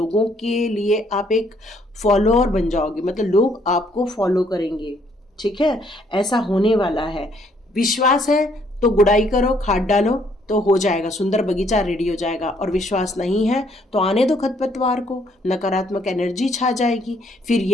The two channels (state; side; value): normal; both; correlation 0.67